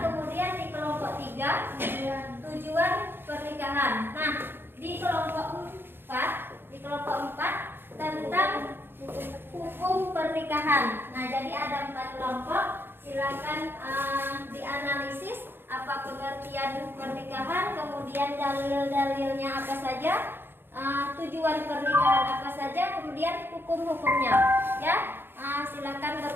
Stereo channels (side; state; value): left; late; 0.10 ms